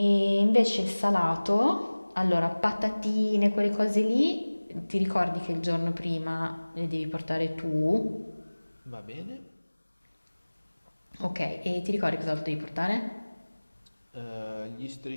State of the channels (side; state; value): both; inverted; correlation -1.00